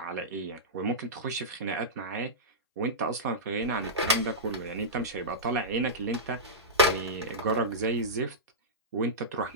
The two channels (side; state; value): both; normal; correlation -0.13